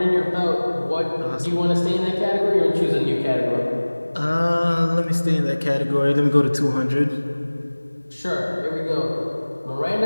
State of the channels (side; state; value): both; inverted; correlation -1.00